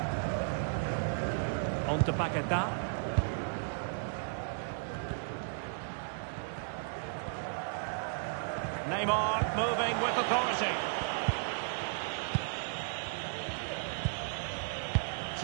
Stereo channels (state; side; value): silent; left; 55 dB below the other